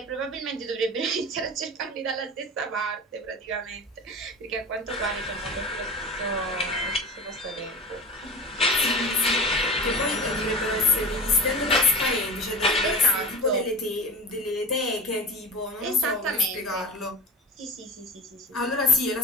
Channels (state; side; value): normal; both; correlation 0.32